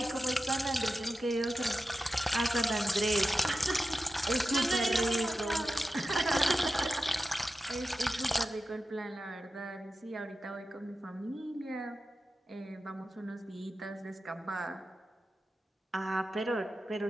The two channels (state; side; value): normal; both; correlation 0.92